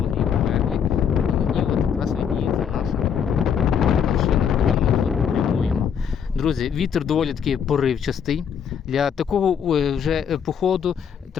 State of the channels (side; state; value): right; quieter; 7.6 dB